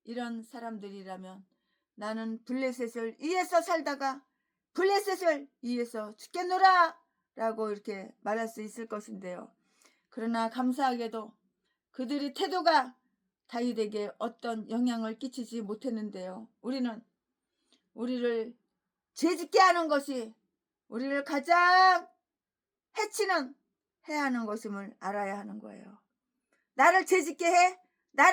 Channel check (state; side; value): identical; both; correlation 1.00